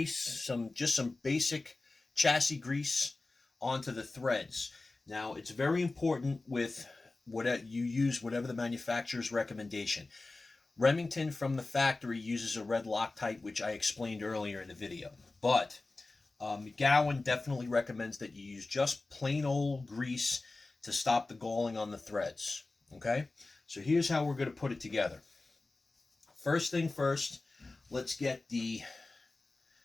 just some basic chassis grease onto the threads. Now, it's very important with whatever you use, whatever the manufacturer's recommendation. Remington from the factory uses a red Loctite, which I explained earlier in the video. But McGowan definitely recommends that you use just plain old grease to stop the galling on the threads. Okay, so here's how we're going to put it together. First thing first, let's get the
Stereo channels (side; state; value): right; quieter; 3.3 dB